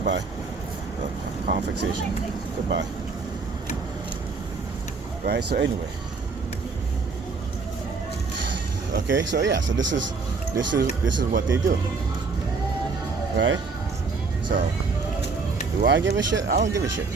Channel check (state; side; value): quieter; left; 4.5 dB